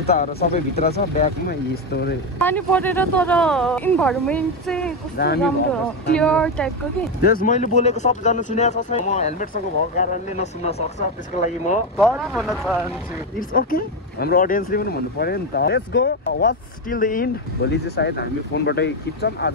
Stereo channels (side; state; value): both; normal; correlation 0.10